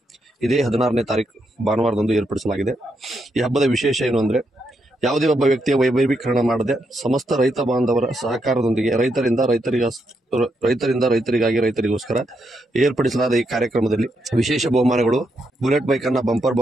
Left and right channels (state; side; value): normal; both; correlation 0.80